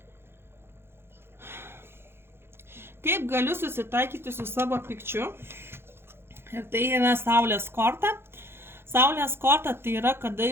Kaip galiu susitaikyti su savo pykčiu? Ir tai yra Saulės korta. Saulės korta tai yra, kada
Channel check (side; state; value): left; late; 0.11 ms